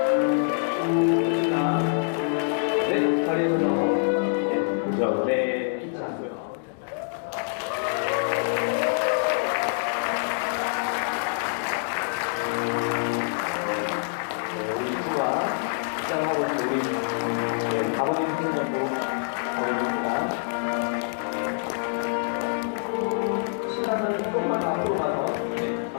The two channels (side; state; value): right; silent; digital silence